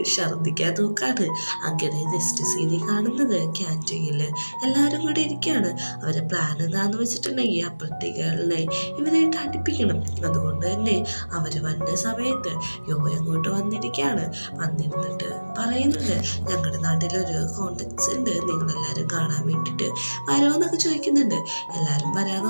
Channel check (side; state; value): both; inverted; correlation -1.00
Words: ഛർദ്ദിക്കാൻ നോക്കാണ്. അങ്ങനെ നെക്സ്റ്റ് സീനിൽ കാണുന്നത് ക്യാൻറ്റീനിൽ എല്ലാവരും കൂടി ഇരിക്കുകയാണ്. അവരെ പ്ലാൻ എന്താണെന്ന് വെച്ചിട്ടുണ്ടെങ്കിൽ അപ്പുറത്തേക്കുകളെ ഇവരായിട്ട് അടുപ്പിക്കണം. അതുകൊണ്ട് തന്നെ അവർ വന്ന സമയത്ത് യോ അങ്ങോട്ട് വന്നിരിക്കുകയാണ്. വന്നിരുന്നിട്ട് പറയുന്നുണ്ട് ഞങ്ങളുടെ നാട്ടിലൊരു കോൺടാക്ട്സ് ഉണ്ട്, നിങ്ങളെല്ലാവരും കാണാൻ വേണ്ടിയിട്ട് വരുമോന്നൊക്കെ ചോദിക്കുന്നുണ്ട്. എല്ലാവരും